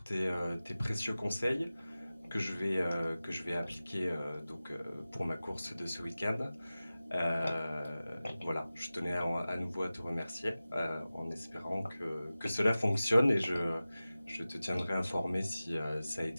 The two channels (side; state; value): both; inverted; correlation -0.96